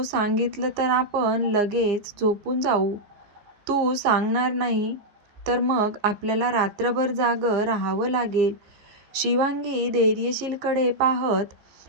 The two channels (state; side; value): late; left; 14 ms